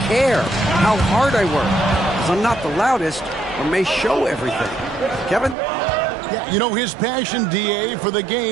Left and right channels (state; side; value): drops out; left; at 5.6 s